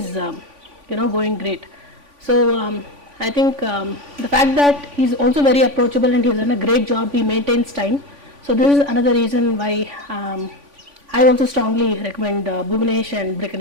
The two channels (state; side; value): late; left; 3.5 ms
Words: going great. So I think the fact that he's also very approachable and he's done a great job, he maintains time. So this is another reason why I also strongly recommend Bhuvanesh and